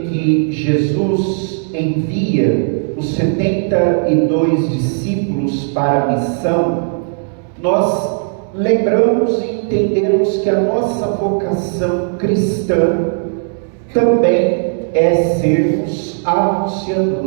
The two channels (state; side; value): silent; left; 58 dB below the other